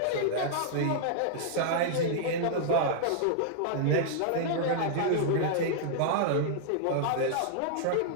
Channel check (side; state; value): both; different; correlation -0.01